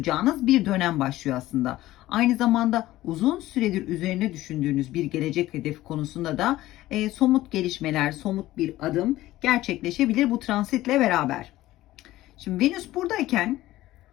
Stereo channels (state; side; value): quieter; right; 16.0 dB